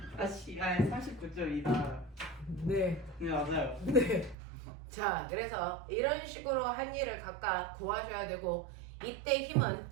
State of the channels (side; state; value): left; drops out; at 4.4 s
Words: 아씨, 39.2다. 네. 네 맞아요. 네. 자, 그래서 이런 식으로 한 일을 각각 구하셔야 되고, 이때 힘은